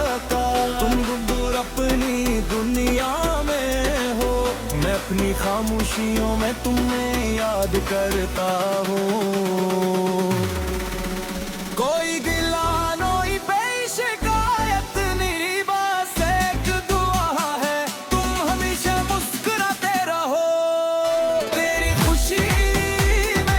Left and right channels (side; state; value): both; identical; correlation 1.00